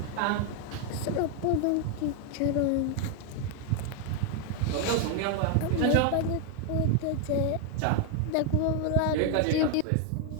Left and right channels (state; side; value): different; both; correlation 0.01